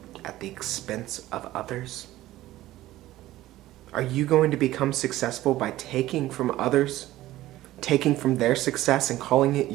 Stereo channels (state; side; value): quieter; left; 15.6 dB